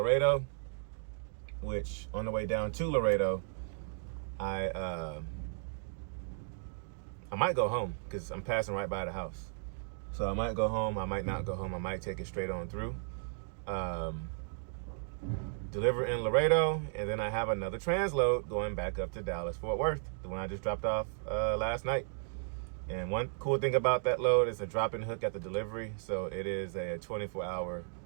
which on the way down to Laredo, I might go home because I'm passing right by the house. So I might go home, I might not go home, I might take it straight on through. Deliver in Laredo, and then I have another transload going back up to Dallas, Fort Worth, the one I just dropped off last night. And one cool thing about that load is a drop-in hook at the delivery, so it is a 24-hour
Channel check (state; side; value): silent; left; digital silence